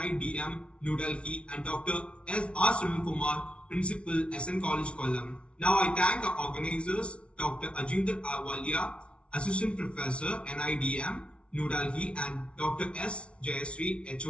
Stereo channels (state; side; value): late; right; 0.060 ms